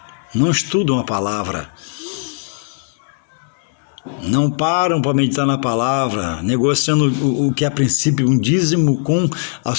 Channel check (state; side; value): silent; right; 67 dB below the other